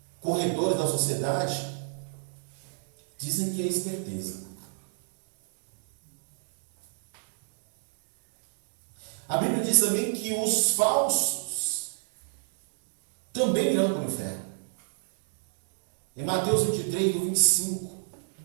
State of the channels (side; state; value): left; silent; digital silence